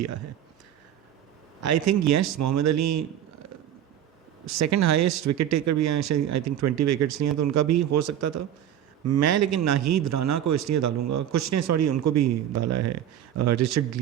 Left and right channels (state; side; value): quieter; left; 10.8 dB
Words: ہے. I think yes, Muhammad Ali second highest wicket taker بھی ہیں, آئی تھنک 20 وکٹس لیے ہیں, تو ان کا بھی ہو سکتا تھا. میں لیکن ناہید رانا کو اس لیے ڈالوں گا, کچھ نے سوری ان کو بھی ڈالا ہے, رچرڈ